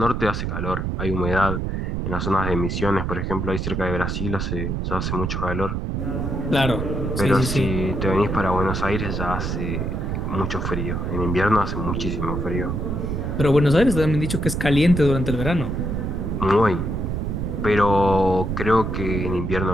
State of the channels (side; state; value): right; noise; rumble, 2 dB below the sound